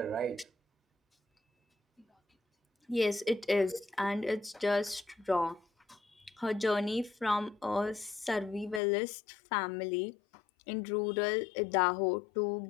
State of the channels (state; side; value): drops out; right; at 8.8 s